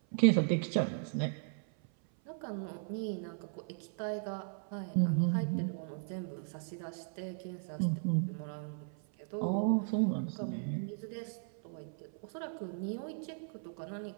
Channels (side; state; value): left; silent; 53 dB below the other